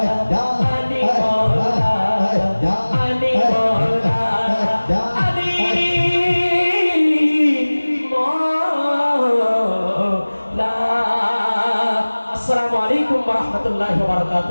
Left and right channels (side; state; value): both; inverted; correlation -1.00